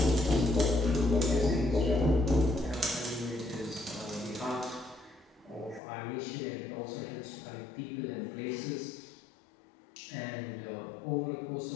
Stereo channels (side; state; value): right; drops out; at 5.8 s